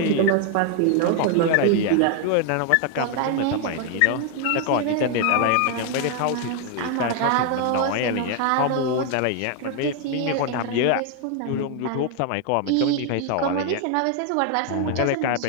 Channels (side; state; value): both; different; correlation 0.01